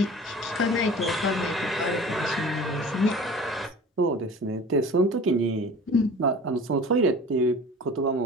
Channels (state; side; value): normal; both; correlation 0.41